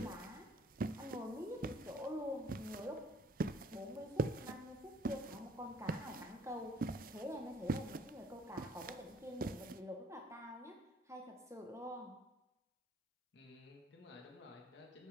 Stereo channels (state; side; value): normal; both; correlation 0.59